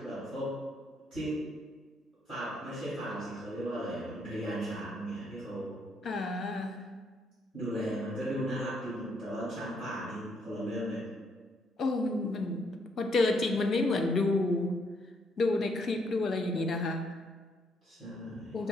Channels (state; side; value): normal; both; correlation 0.72